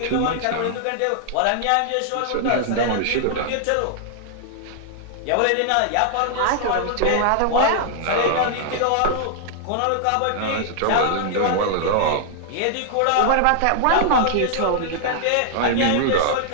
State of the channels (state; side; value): different; both; correlation -0.01